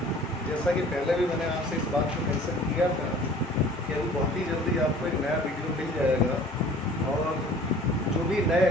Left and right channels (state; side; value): normal; both; correlation 0.48